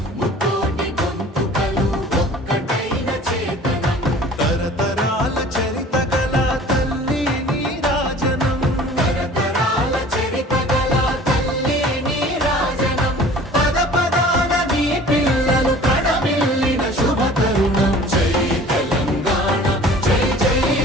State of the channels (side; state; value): both; normal; correlation 0.46